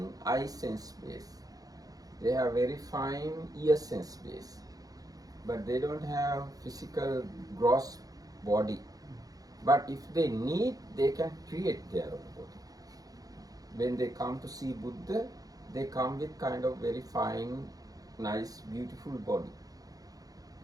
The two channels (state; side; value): late; left; 0.18 ms